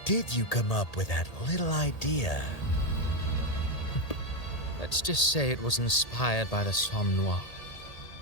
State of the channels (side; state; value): right; late; 1.8 ms